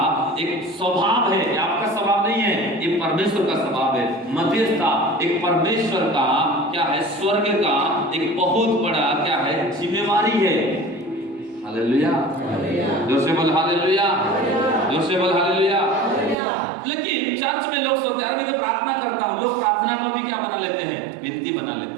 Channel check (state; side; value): drops out; left; at 16.4 s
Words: एक स्वभाव है। आपका स्वभाव नहीं है, ये परमेश्वर का स्वभाव है। मध्यस्थता एक परमेश्वर का क्या है? स्वर्ग का एक बहुत बड़ा क्या है? जिम्मेवारी है। हालेलुया, जोर से बोल हालेलुया, जोर से बोल हालेलुया। लेकिन चर्च में लोग सोचते हैं, मैं तो प्रार्थना करता हूँ, लोग प्रार्थना को भी क्या बना लेते हैं? विनती बना